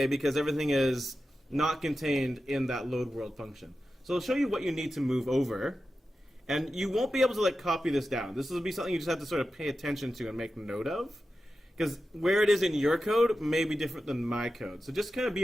because everything is not contained in that load world function. So I'll show you what you need to move over. And you won't be able to copy this down. This will be something you just have to sort of pay attention to and make note of. Because where it is in your code may be different than my code. So just kind of be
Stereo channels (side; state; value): both; normal; correlation 0.92